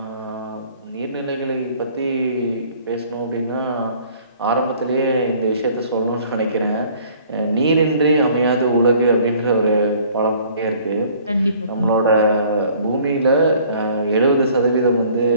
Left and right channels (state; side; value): inverted; both; correlation -0.55